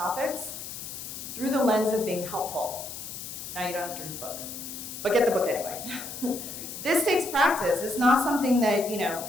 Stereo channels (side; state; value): left; noise; hiss, 9 dB below the sound